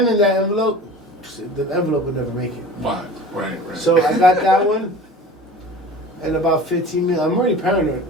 in that envelope, the envelope would never make it. Right. So I got that one. And about 15 minutes, I'm already paranoid.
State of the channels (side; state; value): both; normal; correlation 0.39